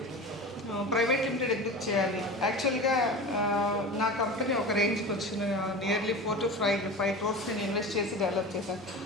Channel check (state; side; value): normal; both; correlation 0.31